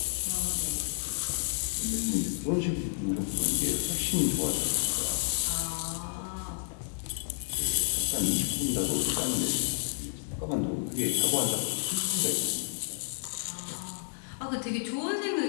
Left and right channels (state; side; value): silent; right; 58 dB below the other